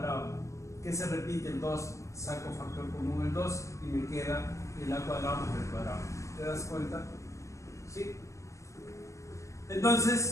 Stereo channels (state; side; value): late; right; 0.15 ms